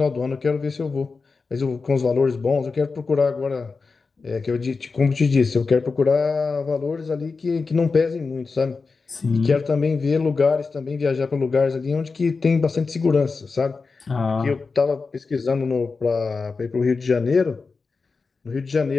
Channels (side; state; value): right; quieter; 4.4 dB